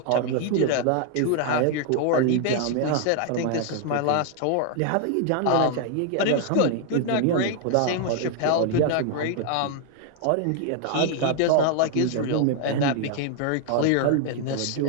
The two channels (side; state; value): both; different; correlation 0.00